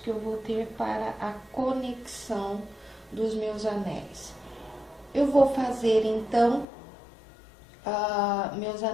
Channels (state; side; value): drops out; right; at 6.7 s